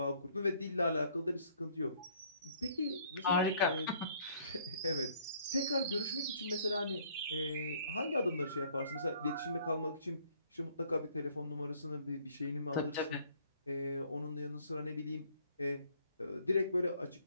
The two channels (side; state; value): both; inverted; correlation -0.61